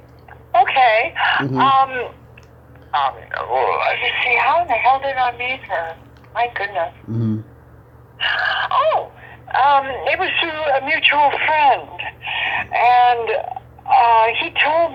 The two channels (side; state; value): both; identical; correlation 1.00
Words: Okay. Let's see, how in the hell did I meet her? My goodness. Mm-hmm. It was through a mutual friend. And he told